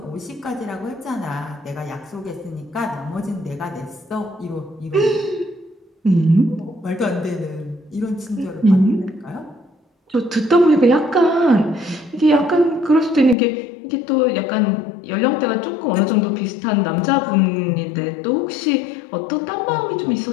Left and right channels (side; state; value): right; drops out; at 13.4 s